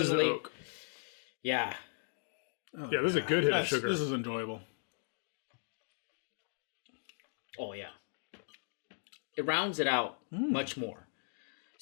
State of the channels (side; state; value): right; silent; digital silence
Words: the definitely- oak. Yeah. Oh, Yeah, this is a good hit of sugar. This is enjoyable. Oh yeah. It rounds it out much more.